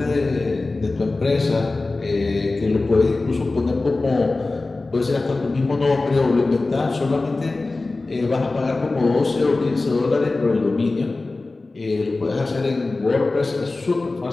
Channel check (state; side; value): quieter; right; 3.3 dB